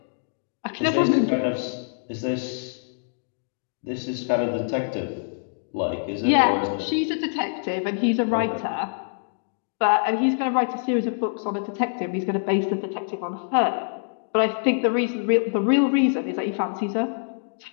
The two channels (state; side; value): silent; right; digital silence